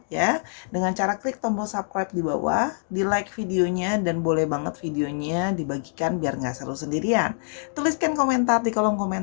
ya, dengan cara klik tombol subscribe di bawah, di like videonya, dan boleh banget videonya dibagikan biar nggak seru sendirian. Tuliskan komentar di kolom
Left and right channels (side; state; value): right; silent; digital silence